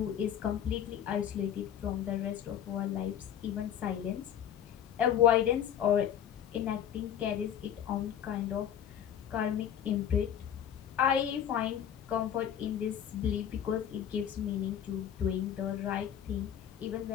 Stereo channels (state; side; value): quieter; right; 9.5 dB